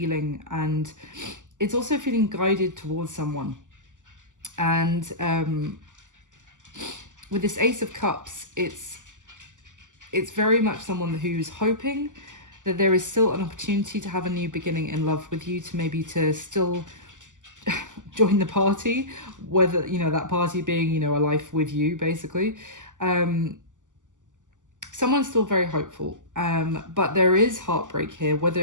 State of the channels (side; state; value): left; late; 0.87 ms